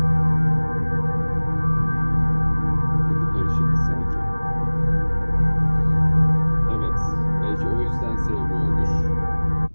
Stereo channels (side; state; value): both; inverted; correlation -1.00